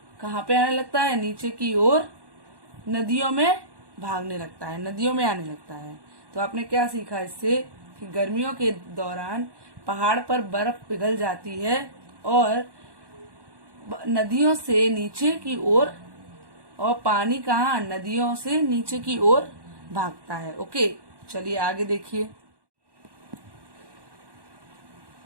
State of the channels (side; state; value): left; late; 1.1 ms